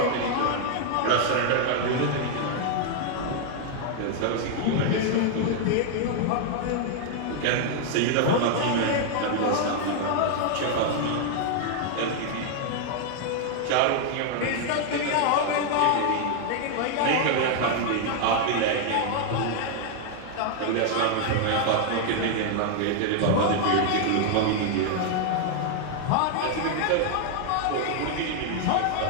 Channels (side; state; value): both; different; correlation 0.00